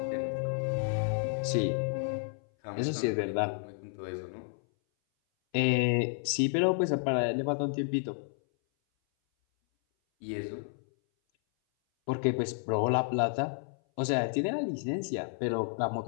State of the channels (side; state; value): right; silent; 57 dB below the other